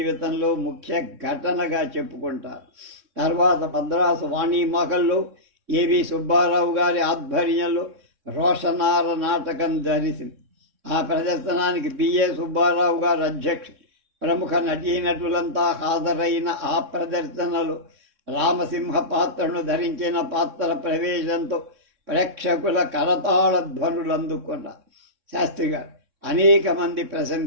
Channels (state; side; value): late; left; 3.6 ms